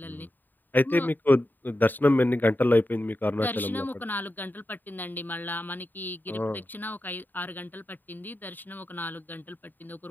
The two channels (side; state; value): right; late; 0.090 ms